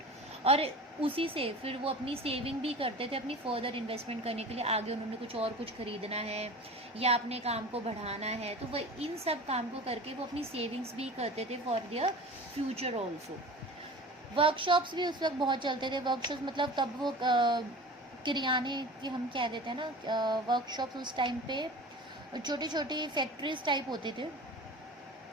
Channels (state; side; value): normal; both; correlation 0.37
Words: और उसी से फिर वो अपनी सेविंग भी करते थे अपनी फर्दर इन्वेस्टमेंट करने के लिए, आगे उन्होंने कुछ खरीदना है या अपने काम को बढ़ाना है, तो वह इन सब काम को करके वो अपनी सेविंग्स भी करते थे for their future also. Workshops भी उस वक्त बहुत चलते थे। वर्कशॉप्स मतलब तब वो किराने की हम कह देते हैं ना, वर्कशॉप्स उस टाइम पे छोटी छोटी फैक्ट्रीज टाइप होते थे,